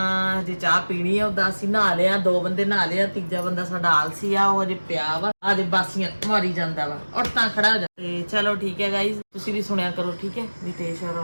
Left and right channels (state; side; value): inverted; both; correlation -1.00